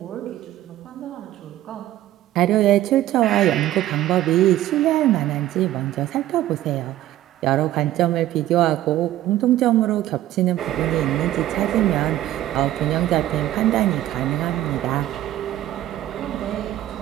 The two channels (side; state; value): left; quieter; 14.0 dB